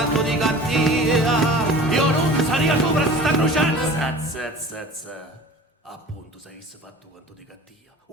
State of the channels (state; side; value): normal; both; correlation 0.41